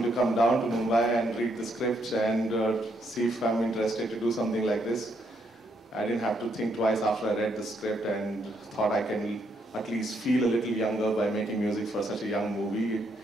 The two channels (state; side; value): normal; both; correlation 0.74